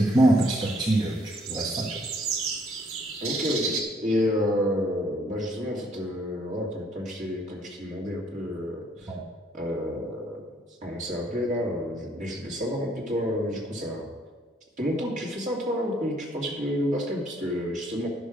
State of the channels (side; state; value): both; normal; correlation 0.66